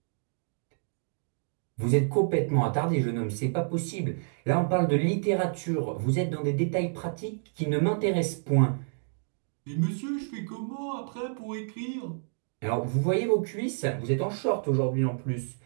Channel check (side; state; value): left; silent; digital silence